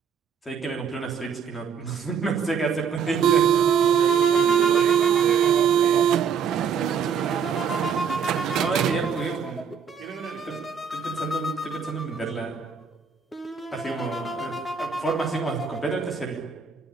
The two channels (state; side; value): quieter; left; 6.9 dB